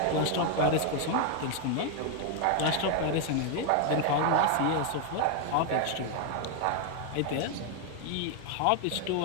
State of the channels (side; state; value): both; different; correlation 0.01